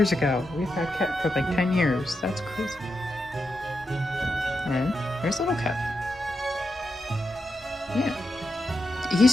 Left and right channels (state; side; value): normal; both; correlation 0.86